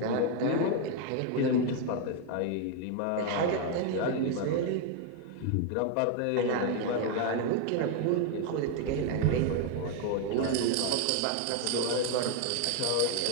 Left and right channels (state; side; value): different; both; correlation 0.01